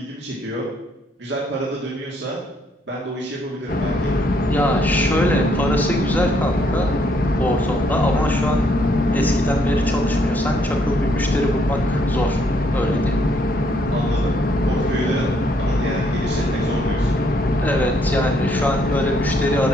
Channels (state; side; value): normal; both; correlation 0.70